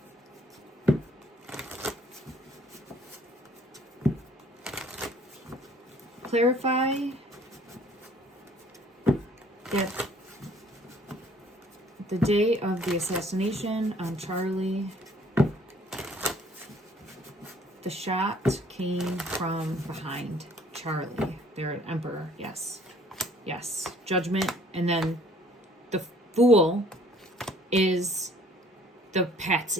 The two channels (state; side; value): normal; both; correlation 0.58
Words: clarify that the day of the assassination on Charlie, the shot came from behind Charlie. They're an emperor. Yes. Yes. Judgment. And then the fool is the